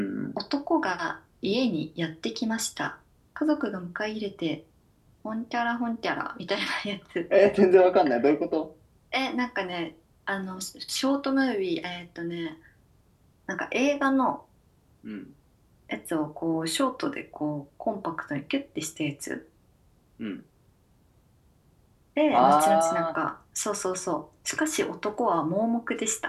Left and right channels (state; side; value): identical; both; correlation 1.00